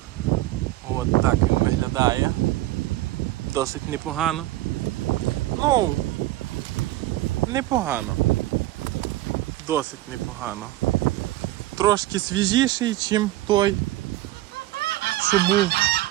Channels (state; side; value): quieter; left; 16.6 dB